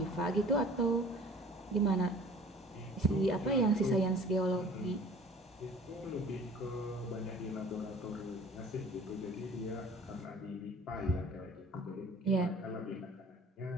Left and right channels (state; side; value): normal; both; correlation 0.48